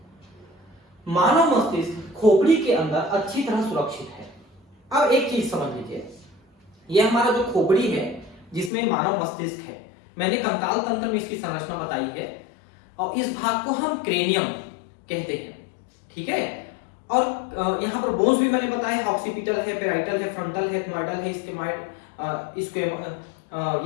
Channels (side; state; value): right; drops out; at 8.7 s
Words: मानव मस्तिष्क खोपड़ी के अंदर अच्छी तरह सुरक्षित है। अब एक चीज समझ लीजिए, यह हमारा जो खोपड़ी है जिसमें मानव मस्तिष्क है, मैंने कंकाल तंत्र में इसकी संरचना बताई है और इस भाग को हम क्रेनियम कहते हैं। ठीक है, और यहां पर बोन्स भी मैंने बताया है, ऑक्सीपिटल है, पेराइटल है, फ्रंटल है, एथमॉइडल है, स्क्वेमॉइड,